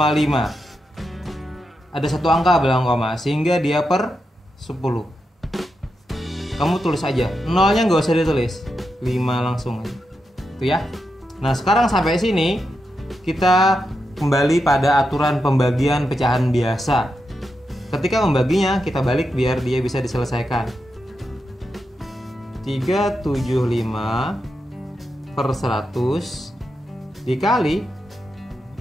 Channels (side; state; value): both; normal; correlation 0.86